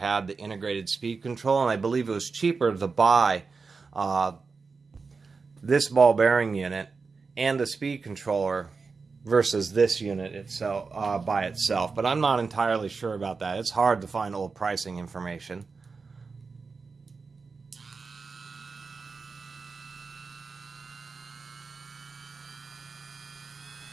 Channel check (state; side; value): quieter; left; 4.6 dB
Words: the integrated speed control, and I believe it was cheaper to buy this ball bearing unit and the speed controller versus this unit itself by itself. But I'm not entirely sure about that. It's hard to find old pricing information.